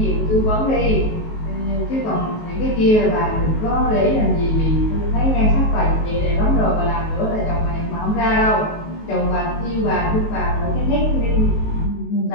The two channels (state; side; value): late; right; 19 ms